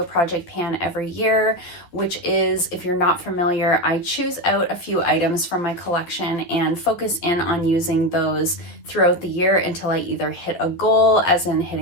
project pan every year, which is, if you're not familiar, I choose out a few items from my collection and focus in on using those throughout the year until I either hit a goal, as in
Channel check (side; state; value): right; late; 11 ms